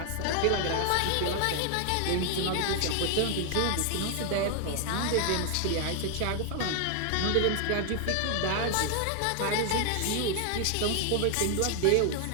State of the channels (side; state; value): both; different; correlation 0.00